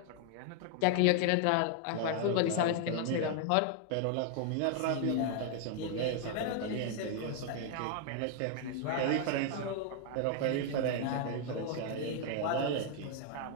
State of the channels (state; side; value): different; both; correlation 0.00